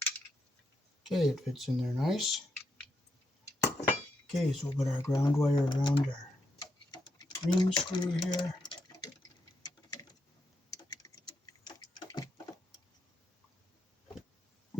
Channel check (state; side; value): normal; both; correlation 0.81